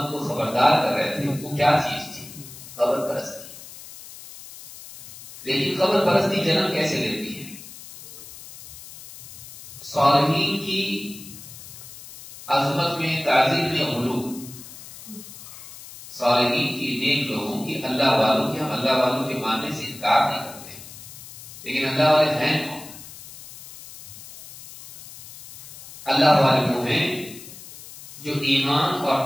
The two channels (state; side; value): noise; left; hiss, 16 dB below the sound